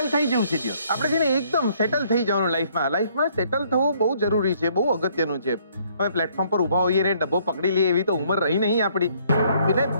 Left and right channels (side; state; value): both; inverted; correlation -0.64